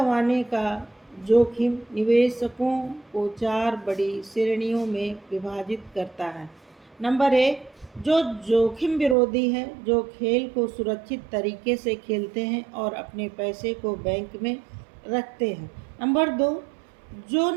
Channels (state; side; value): drops out; left; at 9.2 s